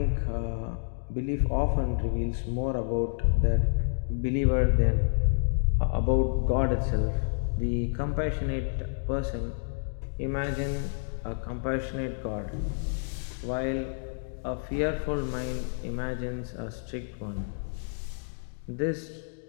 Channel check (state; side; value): silent; right; digital silence